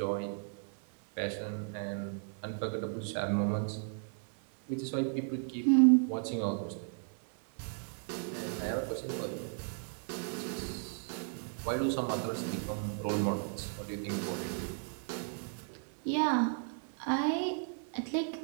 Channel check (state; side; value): silent; left; 54 dB below the other